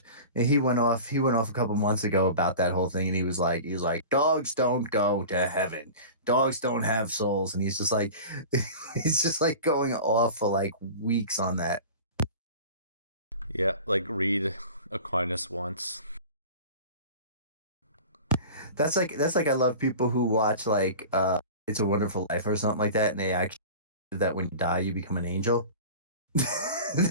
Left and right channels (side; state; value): both; inverted; correlation -0.36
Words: and he went off a couple months ago about that whole thing, and he was like, dogs don't go to heaven, dogs don't have souls, and he's just like going off for like weeks on that. Yeah, like read Aquinas once. That's like I love people who watch like It's a Wonderful Life or something like that, and they actually that when you die you become an angel.